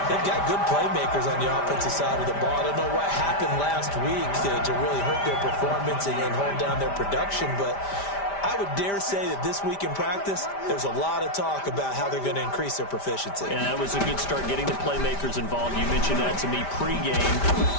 They've got good playmakers on the offensive side of the ball. I don't know what happened last week to really hurt their performance and hold down their production, but I would dare say that this week in practice, there's a lot of talk about how they're going to increase their proficiency. And that was a good start getting the playmakers involved. You mentioned that to me pregame.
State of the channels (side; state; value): right; late; 5.1 ms